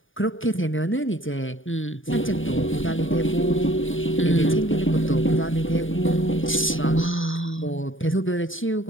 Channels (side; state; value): right; late; 0.57 ms